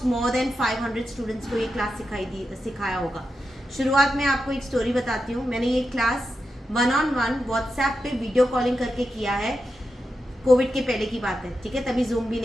मोर देन 500 स्टूडेंट्स को ये क्लास सिखाया होगा. शुरुआत में आपको एक स्टोरी बताती हूँ. मैंने ये क्लास 1-on-1 व्हाट्सएप पे वीडियो कॉलिंग करके किया है. कोविड के पहले की बात है, ठीक है, तभी जूम भी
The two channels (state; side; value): normal; both; correlation 0.89